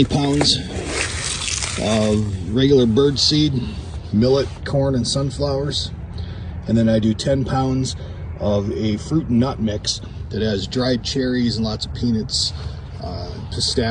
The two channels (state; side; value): identical; both; correlation 1.00